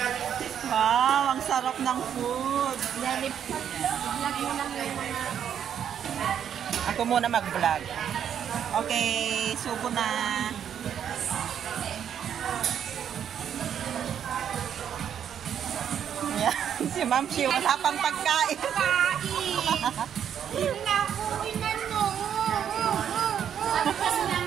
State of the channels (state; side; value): quieter; left; 8.9 dB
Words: Wow, ang sarap ng food. Vlog mo lang yung mga... Ako muna mag-vlog. Okay, subo na. Ayan, si Ma'am Shi, wala pang pagkain. Naku, inano. Sabi kasi